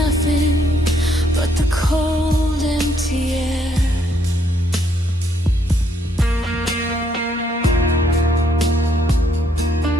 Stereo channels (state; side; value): normal; both; correlation 0.71